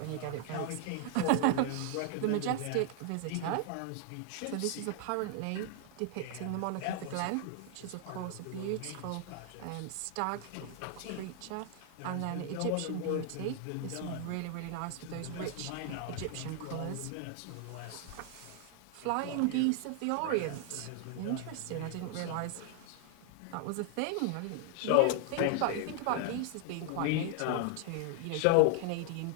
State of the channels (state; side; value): different; both; correlation 0.00